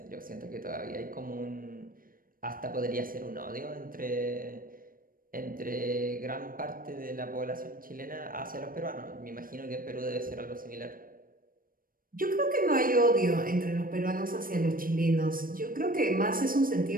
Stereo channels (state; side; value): late; left; 0.41 ms